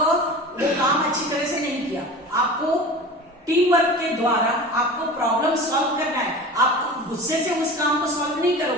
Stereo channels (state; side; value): normal; both; correlation 0.35